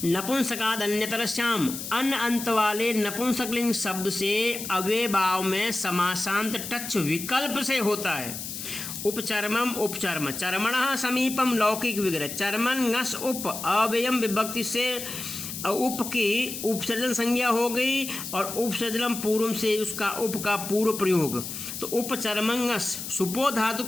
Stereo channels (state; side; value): noise; left; hiss, 7 dB below the sound